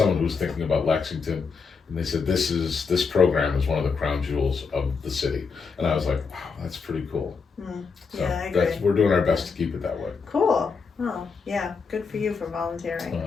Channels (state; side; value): quieter; right; 5.1 dB